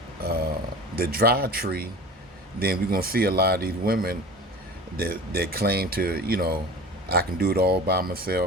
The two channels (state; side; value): normal; both; correlation 0.37